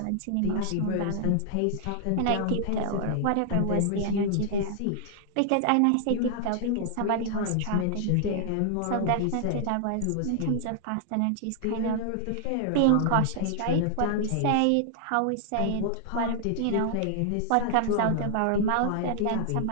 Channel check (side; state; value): both; different; correlation -0.01